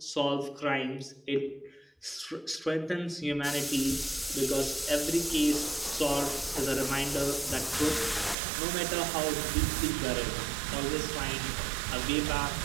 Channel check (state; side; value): drops out; left; at 8.3 s